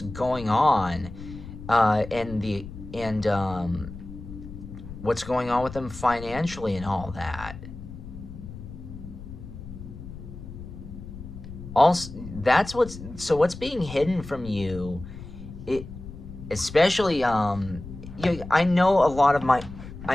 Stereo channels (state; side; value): noise; left; rumble, 13 dB below the sound